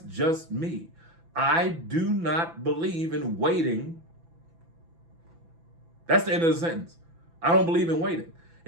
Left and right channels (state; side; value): late; left; 6.0 ms